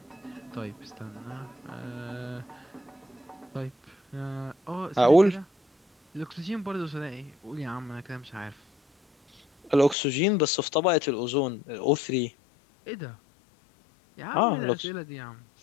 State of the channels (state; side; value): drops out; right; at 10.0 s